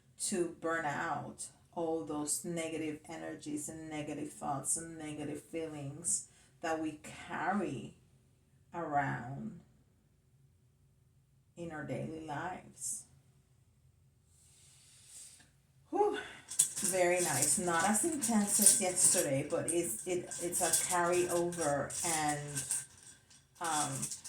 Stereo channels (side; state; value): both; identical; correlation 1.00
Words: To burn out all those negative energies and negative thoughts and negative feelings that we carry around in our daily lives. Whew. Very nice. Not as intense as yesterday, but it's a carryover, and